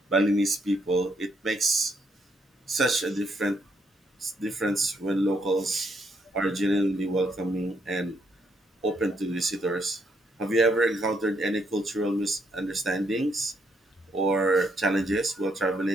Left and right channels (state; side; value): normal; both; correlation 0.74